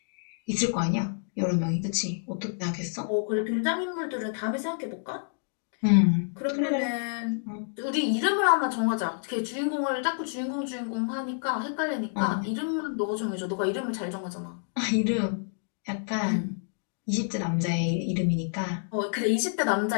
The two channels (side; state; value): right; silent; digital silence